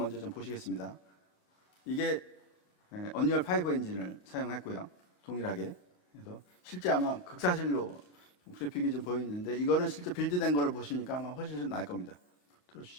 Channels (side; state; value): right; late; 28 ms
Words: 좀 보시겠습니다. 이게 언리얼 5 엔진을 사용했고요. 동일하게. 그래서 실제 아마 극사실로 그래픽이 좀 보이는데 이거는 실제 빌드된 거를 보시니까 아마 훨씬 좀 나을 겁니다.